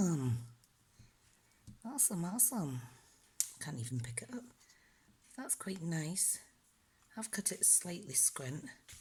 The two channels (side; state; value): both; identical; correlation 1.00